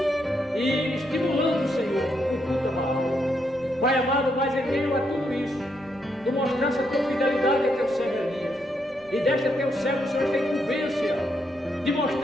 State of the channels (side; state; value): right; noise; rumble, 26 dB below the sound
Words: e estimulando, Senhor, o culto a Baal. Pai amado, mas em meio a tudo isso, tu mostraste a tua fidelidade a teu servo Elias, e deste a teu servo, o Senhor, esta incumbência de